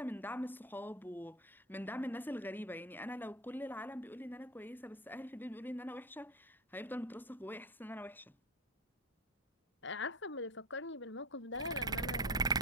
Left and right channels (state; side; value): normal; both; correlation 0.19